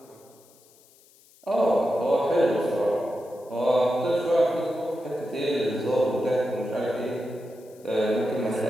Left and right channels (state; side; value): noise; left; hiss, 28 dB below the sound